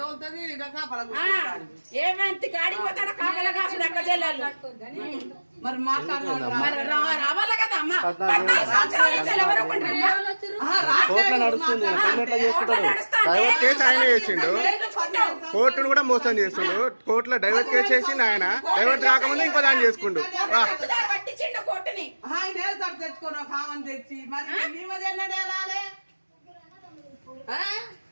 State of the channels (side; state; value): both; inverted; correlation -1.00